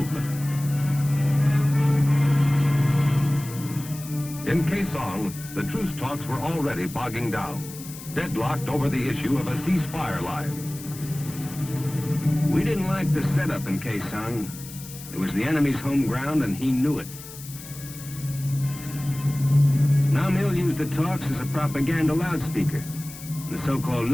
In Quezon, the truce talks were already bogging down, deadlocked over the issue of a ceasefire line. We didn't like the setup in Quezon. It was the enemy's home ground, and he knew it. Nam Il used the talks as a propaganda loudspeaker. The so-called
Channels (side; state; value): left; noise; hiss, 14 dB below the sound